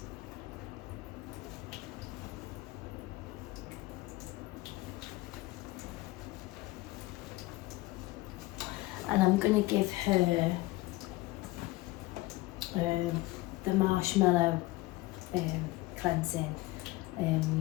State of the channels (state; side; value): quieter; right; 19.9 dB